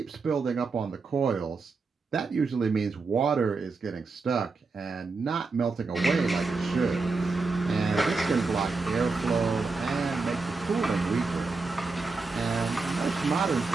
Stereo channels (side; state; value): left; quieter; 4.1 dB